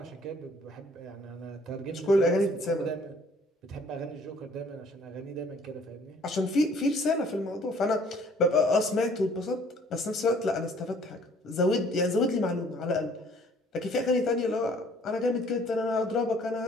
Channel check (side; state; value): both; normal; correlation 0.57